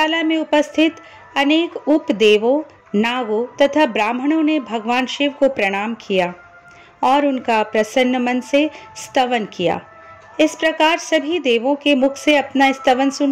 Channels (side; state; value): both; identical; correlation 1.00